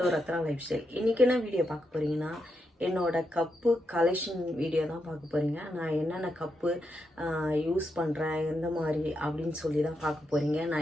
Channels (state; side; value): normal; both; correlation 0.83